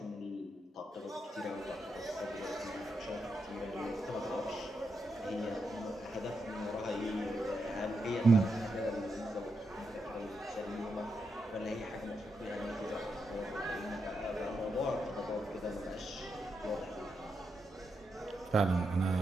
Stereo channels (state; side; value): normal; both; correlation 0.83